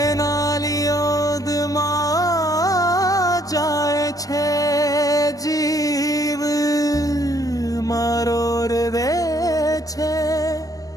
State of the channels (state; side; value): late; right; 0.17 ms